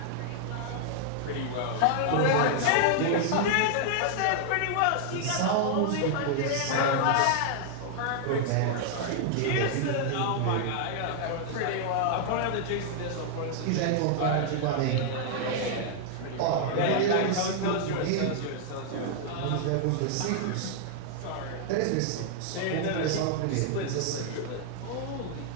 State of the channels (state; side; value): different; both; correlation 0.00